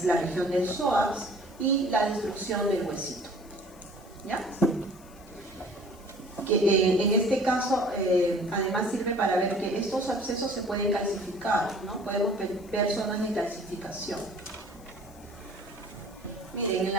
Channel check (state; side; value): noise; left; hiss, 27 dB below the sound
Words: la región del psoas, y la destrucción del huesito. ¿Ya? Que en este caso además sirve para ver que estos abscesos se pueden calcificar, ¿no? Podemos ver zonas de calcificación. Miren, en